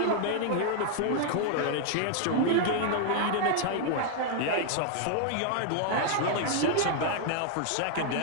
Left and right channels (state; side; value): different; both; correlation -0.01